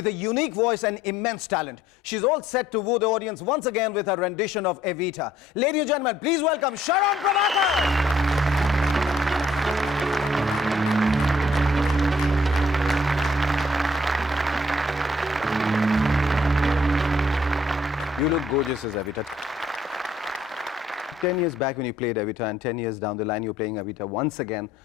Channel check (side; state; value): both; normal; correlation 0.63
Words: a unique voice and immense talent. She's all set to woo the audience once again with her rendition of Evita. Ladies and gentlemen, please welcome Sharon Prabhakar. You look gorgeous as Evita. 10 years back when you played Evita and 10 years down the line you're playing Evita once again.